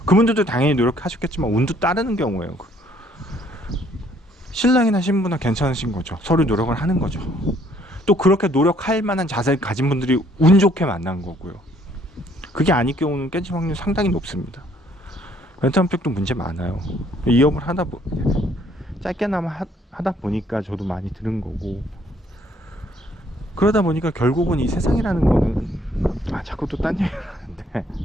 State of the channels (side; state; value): both; normal; correlation 0.64